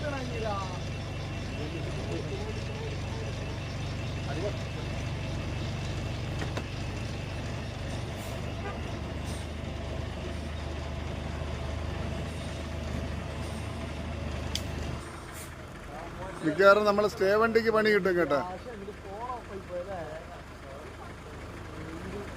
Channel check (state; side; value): identical; both; correlation 1.00